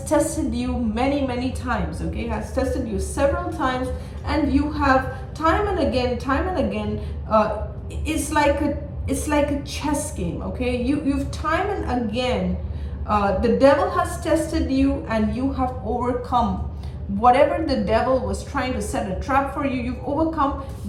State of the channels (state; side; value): identical; both; correlation 1.00